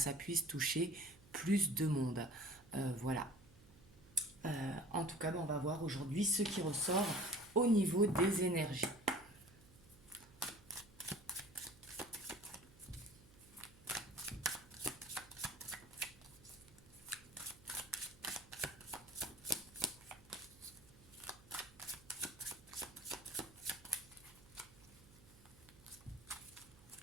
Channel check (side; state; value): right; noise; hum, 23 dB below the sound